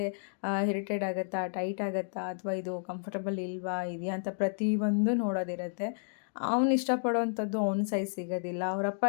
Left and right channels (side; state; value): right; silent; digital silence